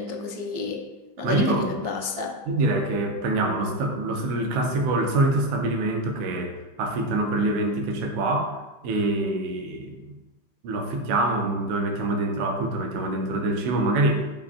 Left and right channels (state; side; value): late; left; 15 ms